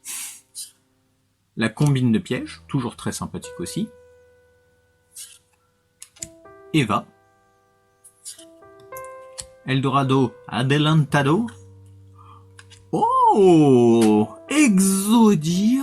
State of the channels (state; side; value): identical; both; correlation 1.00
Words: La combine de pièges, toujours très sympathique aussi. Eva. Eldorado, Adelantado. Oh,